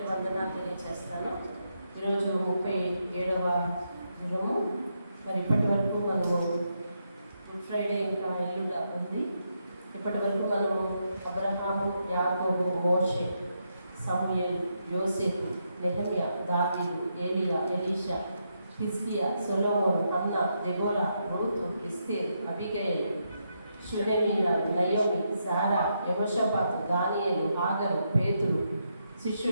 వందనాలు తెలియజేస్తాను. ఈరోజు 37వ దినము. మరి ఇప్పటి వరకు మనము గుడ్ ఫ్రైడే ఇంకా ఎల్లుండ ఉంది. ఇప్పటి వరకు మనము అబ్రహాము, యాకోబు, మోషే, సమూయేలు, యోసేపు, నెహెమ్యా, దావీదు, ఏలియా, ఎలీషా, హిజ్కియా, సొలొమోను, హన్నా, దెబోరా, రూతు, ఎస్తేరు, అబిగయలు, షూనేమీరా, నయోమి, సారా, యెహోషాపాతు, దానియేలు, హాగరు, పేతురు,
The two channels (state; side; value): inverted; both; correlation -0.81